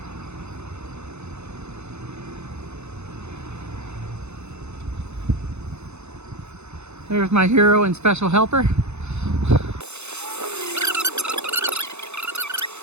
There's my hero and special helper.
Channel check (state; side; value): late; left; 0.81 ms